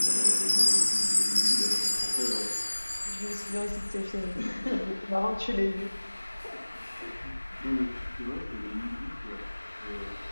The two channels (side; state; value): both; inverted; correlation -1.00